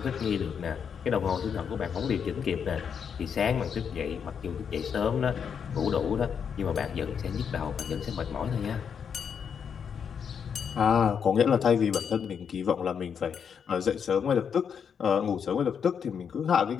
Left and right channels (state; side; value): quieter; right; 7.2 dB